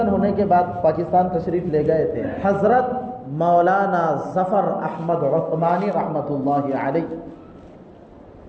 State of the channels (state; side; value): identical; both; correlation 1.00